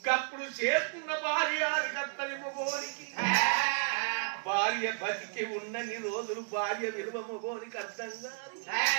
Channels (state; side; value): silent; left; 56 dB below the other